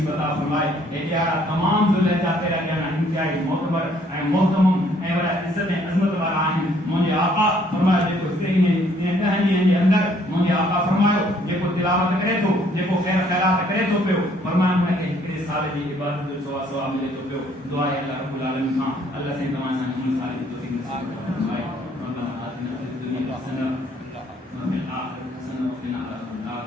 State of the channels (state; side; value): normal; both; correlation 0.63